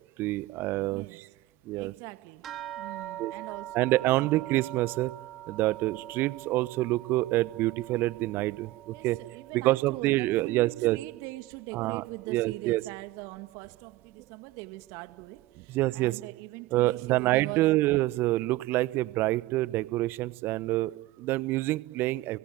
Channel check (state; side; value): quieter; left; 17.9 dB